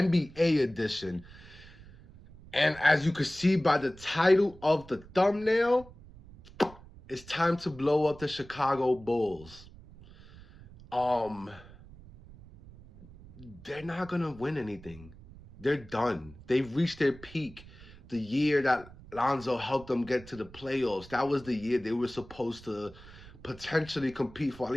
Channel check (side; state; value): right; noise; rumble, 20 dB below the sound